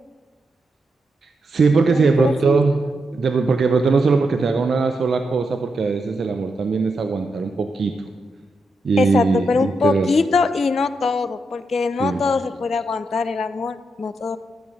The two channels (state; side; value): normal; both; correlation 0.84